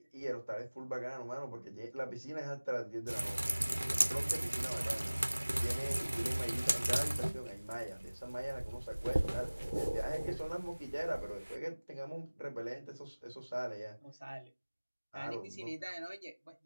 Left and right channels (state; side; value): inverted; both; correlation -1.00